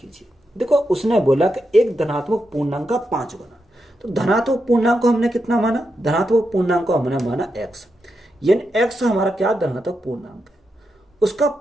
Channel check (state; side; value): normal; both; correlation 0.86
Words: देखो उसने बोला कि एक धनात्मक पूर्णांक का 5 गुना, तो धनात्मक पूर्णांक को हमने कितना माना, धनात्मक पूर्णांक को हमने माना x, यानी x हमारा क्या धनात्मक पूर्णांक है, उसका